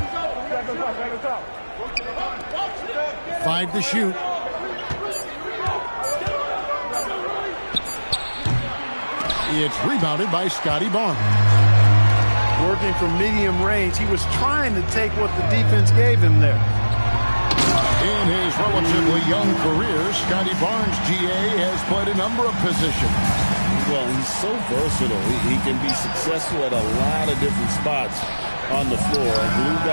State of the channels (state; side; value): inverted; both; correlation -1.00